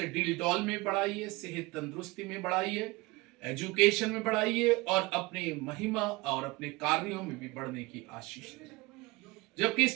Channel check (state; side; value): quieter; left; 23.0 dB